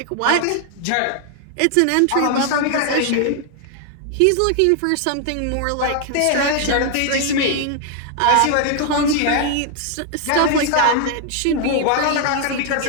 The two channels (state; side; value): different; both; correlation 0.00